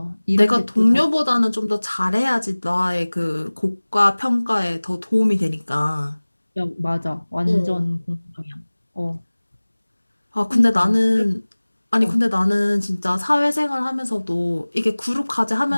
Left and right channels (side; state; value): both; inverted; correlation -1.00